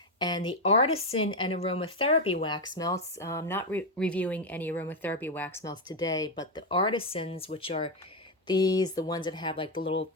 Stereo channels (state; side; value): normal; both; correlation 0.06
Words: And the Artisan and Aromatherapy wax melts, I'm not reviewing any aromatherapy wax melts today, but the Artisans, which are these, the ones that have like